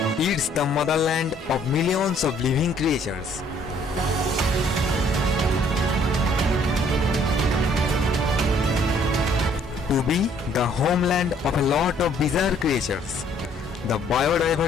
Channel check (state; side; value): normal; both; correlation 0.62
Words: It's the motherland of millions of living creatures. To be the homeland of a lot of bizarre creatures, the